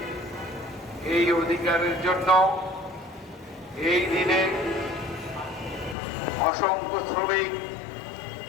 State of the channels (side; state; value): right; drops out; at 6.0 s